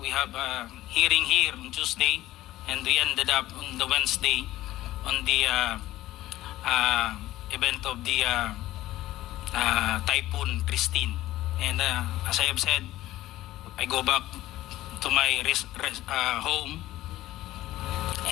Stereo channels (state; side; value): quieter; right; 15.5 dB